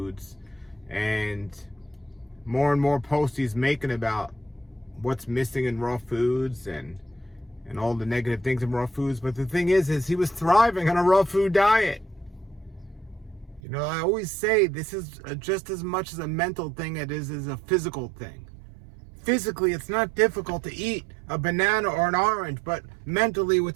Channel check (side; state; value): left; drops out; at 13.6 s